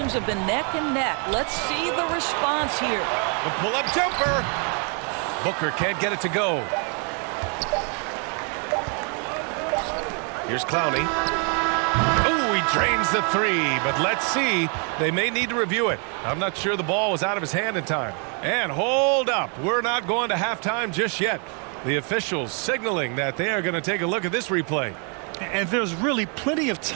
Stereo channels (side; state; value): left; quieter; 38.4 dB